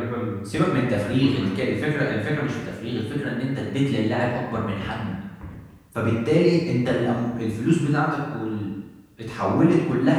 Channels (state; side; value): identical; both; correlation 1.00